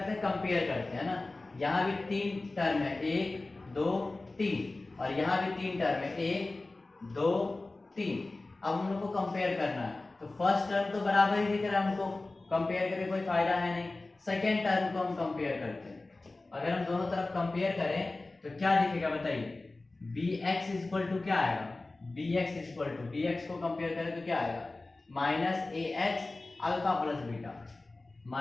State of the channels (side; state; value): right; quieter; 3.1 dB